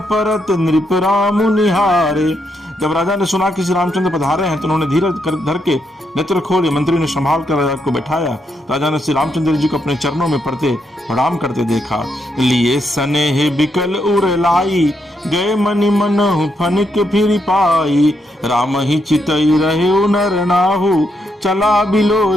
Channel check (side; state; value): both; normal; correlation 0.79